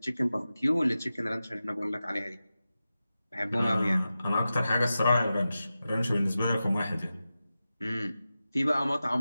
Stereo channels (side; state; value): both; inverted; correlation -0.93